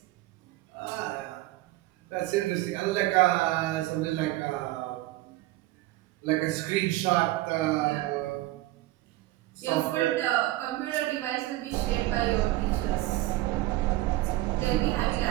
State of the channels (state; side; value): quieter; left; 17.4 dB